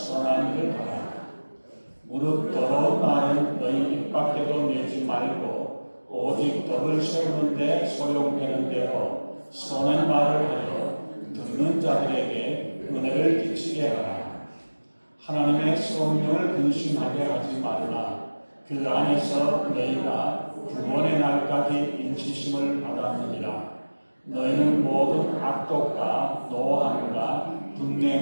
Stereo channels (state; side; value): inverted; both; correlation -1.00